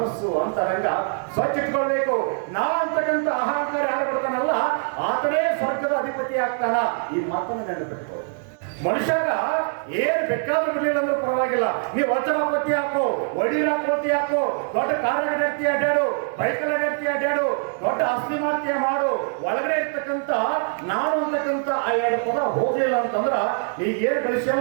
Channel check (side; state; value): left; silent; 58 dB below the other